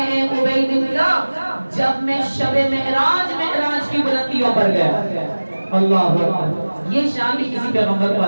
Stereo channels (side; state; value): both; inverted; correlation -1.00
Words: اے ابی بن کعب، جب میں شب معراج کی بلندیوں پر گیا. اللہ اکبر، یہ شان بھی کسی پیغمبر کو